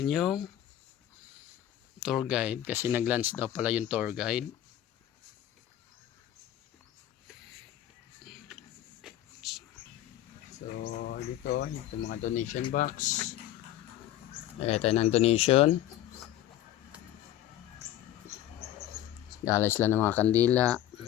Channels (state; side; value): quieter; right; 12.4 dB